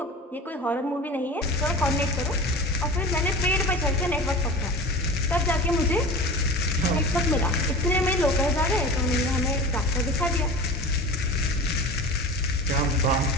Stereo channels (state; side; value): normal; both; correlation 0.33